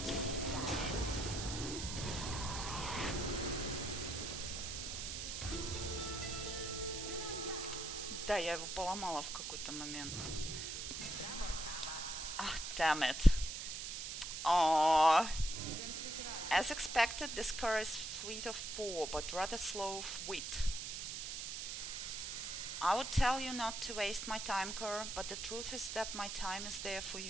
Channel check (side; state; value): right; noise; hiss, 5 dB below the sound